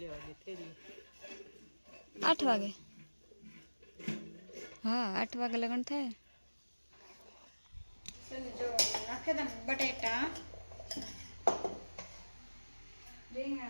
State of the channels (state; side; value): inverted; both; correlation -1.00